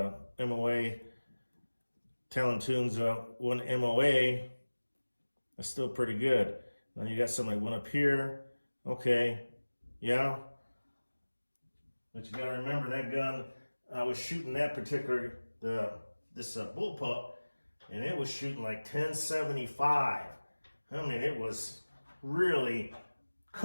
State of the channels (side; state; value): both; inverted; correlation -1.00